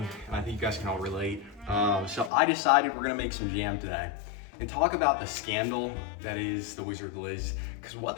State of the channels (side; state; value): right; drops out; at 2.3 s